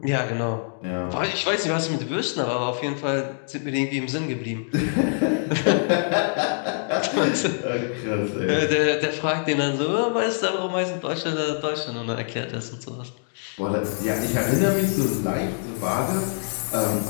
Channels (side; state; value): right; silent; digital silence